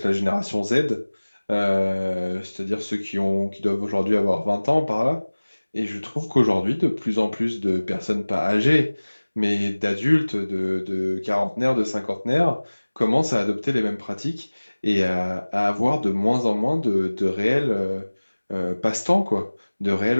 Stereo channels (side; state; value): both; inverted; correlation -1.00